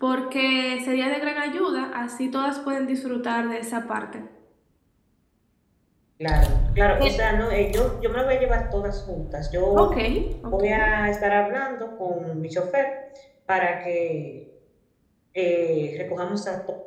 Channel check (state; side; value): identical; both; correlation 1.00